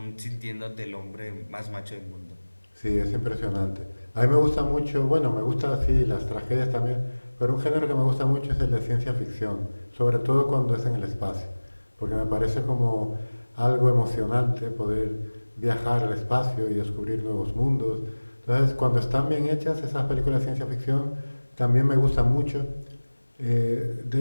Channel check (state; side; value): inverted; both; correlation -1.00